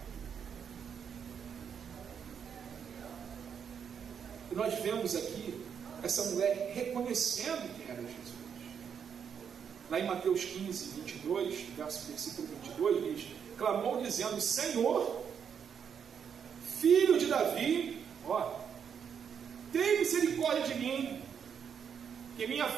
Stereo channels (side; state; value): left; quieter; 7.5 dB